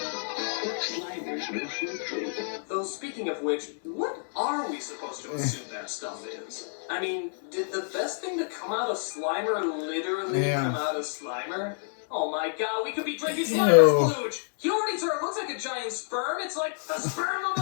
Slimer's new fruit drink. Though speaking of which, what are we supposed to assume that stuff is? I mean, did the best thing to come out of Slimer literally come out of Slimer? Oh my God, we could be drinking Slimer's splooge! It looks like a giant sperm. It's like the sperm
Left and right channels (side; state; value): right; silent; 59 dB below the other